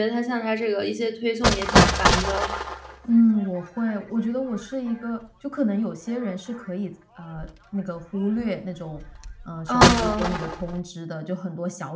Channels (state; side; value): identical; both; correlation 1.00